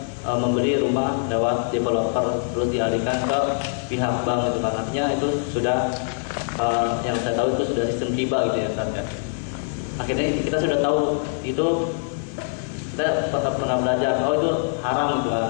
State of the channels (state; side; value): silent; right; 58 dB below the other